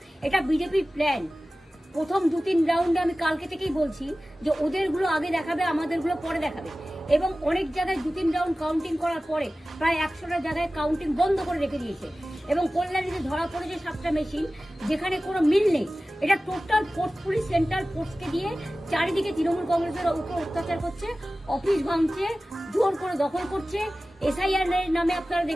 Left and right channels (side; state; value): both; normal; correlation 0.96